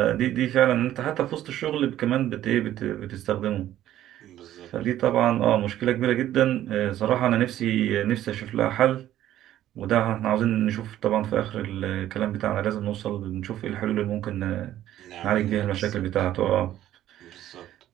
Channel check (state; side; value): quieter; left; 12.8 dB